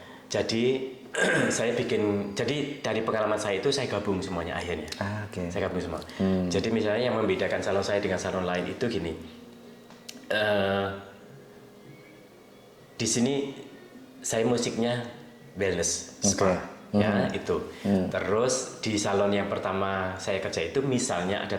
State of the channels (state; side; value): identical; both; correlation 1.00